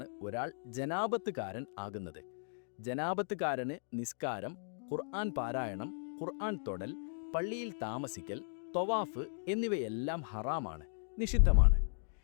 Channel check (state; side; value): silent; right; digital silence